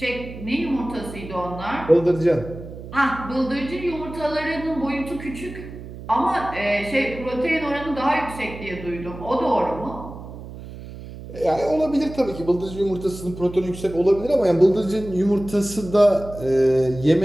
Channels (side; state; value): right; noise; hum, 13 dB below the sound